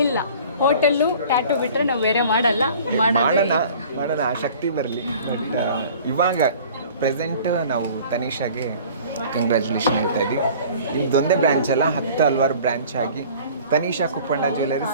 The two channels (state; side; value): inverted; both; correlation -0.47